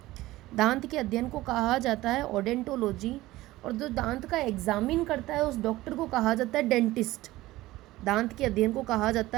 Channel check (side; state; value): left; quieter; 17.6 dB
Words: दांत के अध्ययन को कहा जाता है ओडेंटोलॉजी। और जो दांत का एग्जामिन करता है उस डॉक्टर को कहा जाता है डेंटिस्ट। दांत के अध्ययन को कहा